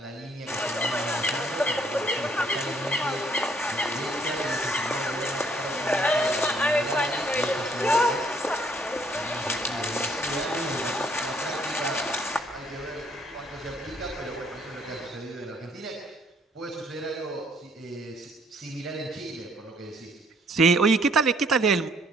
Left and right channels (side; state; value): both; normal; correlation 0.65